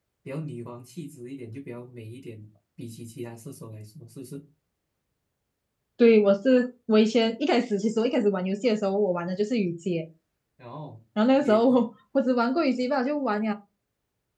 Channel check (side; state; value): both; identical; correlation 1.00